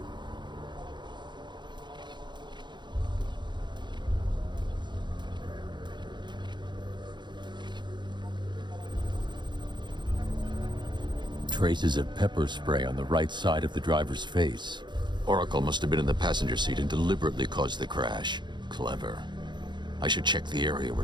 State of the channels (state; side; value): late; left; 0.22 ms